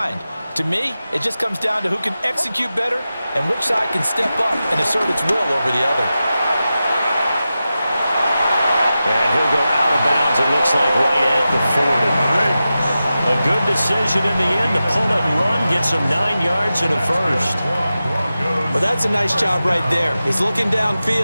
To me, it just comes down to who can execute better and which side can step up and assert its will over the other. And he'll go out of bounds, it looks like, right at the 40. A good decision in the end to pull it and run, get some 9 yards and a first. Well, that's a nice job right there. He's looking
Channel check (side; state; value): both; inverted; correlation -0.93